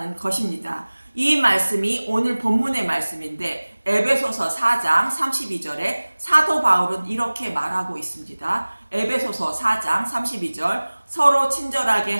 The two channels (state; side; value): inverted; both; correlation -1.00